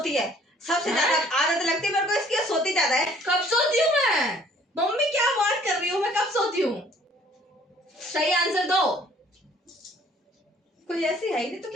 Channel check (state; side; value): normal; both; correlation 0.58